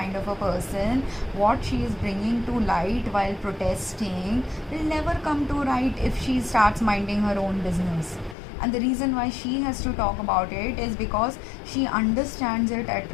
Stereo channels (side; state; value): right; drops out; at 8.3 s